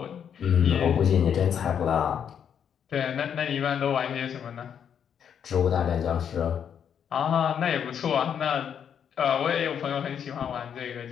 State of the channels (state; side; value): quieter; right; 8.2 dB